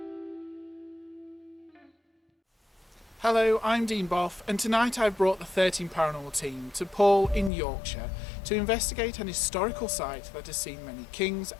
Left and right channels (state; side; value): drops out; right; at 7.5 s